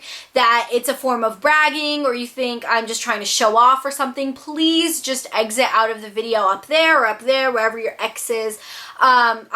that it's a form of bragging or you think I'm just trying to show off or something, please just exit out of the video up there or up there, wherever your X is.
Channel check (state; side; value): identical; both; correlation 1.00